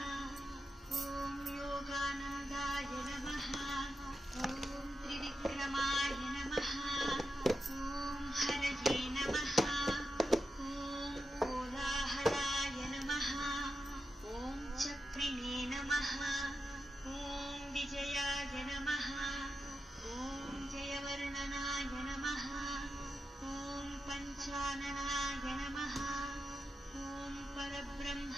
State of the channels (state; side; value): normal; both; correlation 0.89